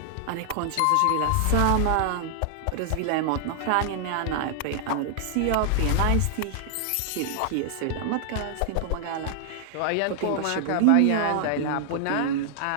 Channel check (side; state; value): both; different; correlation -0.01